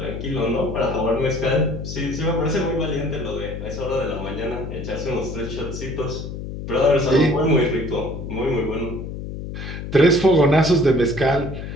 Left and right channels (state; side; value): noise; left; hum, 8 dB below the sound